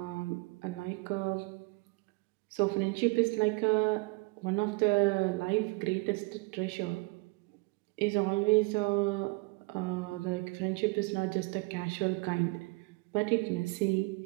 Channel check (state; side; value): quieter; left; 25.8 dB